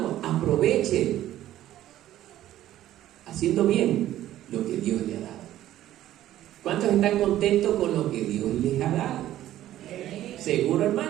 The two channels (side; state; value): left; quieter; 13.3 dB